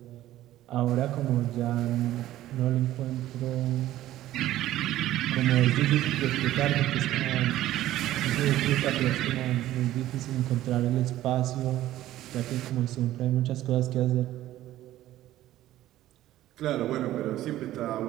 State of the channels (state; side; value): quieter; left; 14.3 dB